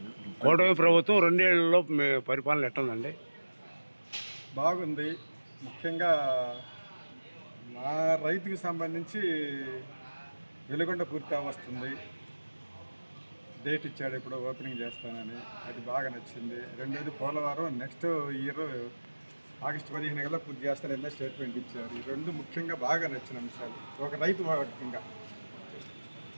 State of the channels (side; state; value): both; inverted; correlation -1.00